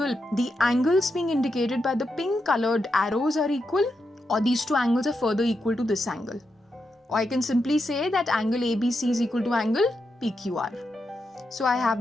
the angles being indicated by the pink colored arrows are equal, or these two angles are further equal to this angle. Or I can simply say that angle ABC is equal to angle PQR. So I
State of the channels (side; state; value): both; normal; correlation 0.85